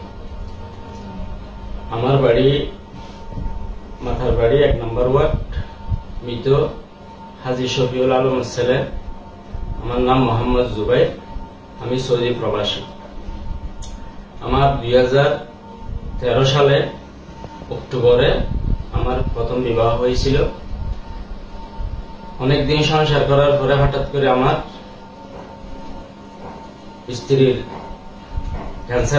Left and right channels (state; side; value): identical; both; correlation 1.00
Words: আমার বাড়ি মাথার বাড়ি 1 নম্বর ওয়ার্ড, মৃত হাজী শফিউল আলমের ছেলে। আমার নাম মোহাম্মদ জুবাইর, আমি সৌদি প্রবাসী। আমার 2013 সালে অক্টোবরে আমার প্রথম বিবাহ হয়েছিল। অনেকদিন সংসার করার পরে হঠাৎ করে স্ত্রীর